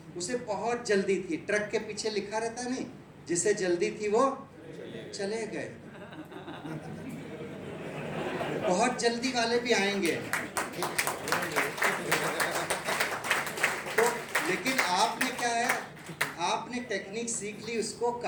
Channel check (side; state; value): both; identical; correlation 1.00